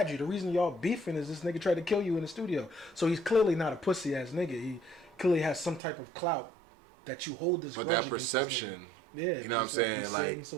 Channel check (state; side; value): drops out; left; at 5.8 s